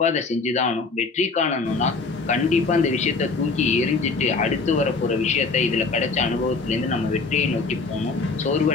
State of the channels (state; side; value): quieter; right; 4.1 dB